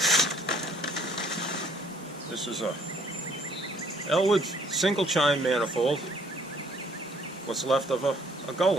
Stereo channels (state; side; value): normal; both; correlation 0.61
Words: This is a Elwood single chime manifold. What's left of a